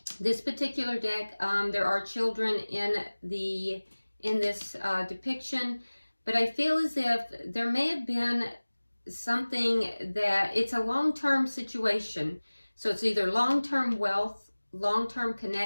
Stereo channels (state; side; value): inverted; both; correlation -1.00